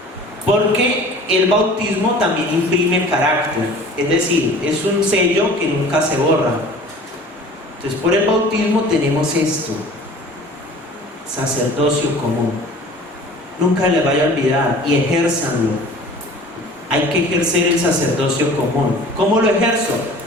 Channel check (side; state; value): both; normal; correlation 0.45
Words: porque el bautismo también imprime carácter, es decir, es un sello que nunca se borra. Entonces, por el bautismo tenemos esto: sacerdocio común. Nunca les vaya a olvidar y ejérzanlo. Hay que ejercer el sacerdocio común. ¿Cómo lo ejerzo?